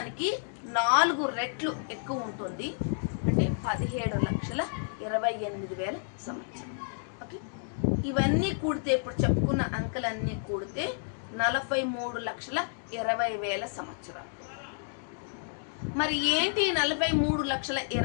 4 రెట్లు ఎక్కువ ఉంటుంది. అంటే 17,28,000 సంవత్సరం. ఓకే. ఇవన్నీ కూడితే, ఇప్పుడు చెప్పుకున్న అంకెలన్నీ కూడితే 43,20,000 సంవత్సరాలు. మరి ఏంటి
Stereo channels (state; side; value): silent; right; digital silence